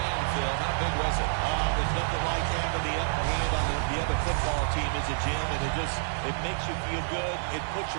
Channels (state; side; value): silent; left; digital silence